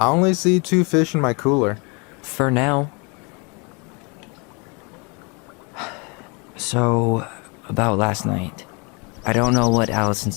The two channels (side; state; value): right; quieter; 31.6 dB